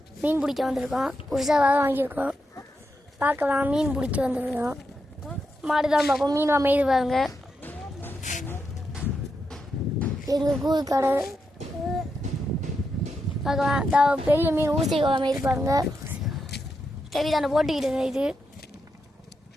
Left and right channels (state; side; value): normal; both; correlation 0.84